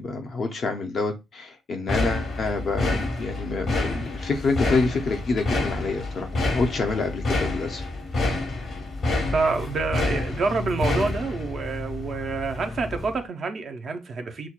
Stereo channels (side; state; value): both; normal; correlation 0.80